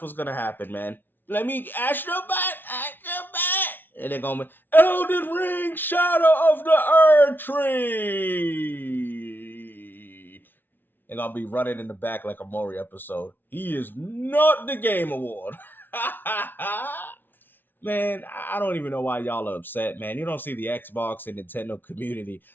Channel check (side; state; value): right; late; 0.095 ms